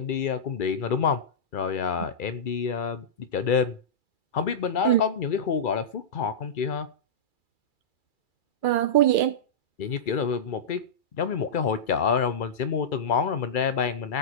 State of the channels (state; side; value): late; right; 2.3 ms